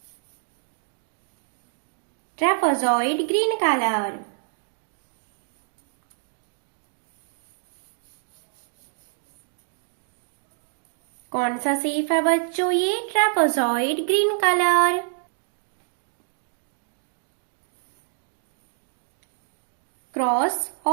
Trapezoid green colour. कौन सा शेप है बच्चों? ये trapezoid green colour. Cross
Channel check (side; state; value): left; silent; digital silence